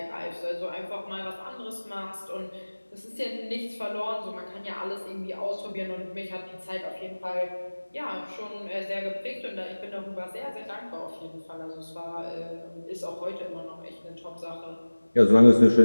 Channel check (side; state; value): both; inverted; correlation -1.00